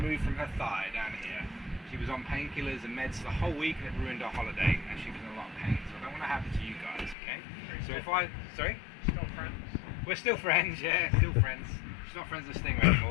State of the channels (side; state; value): right; drops out; at 7.2 s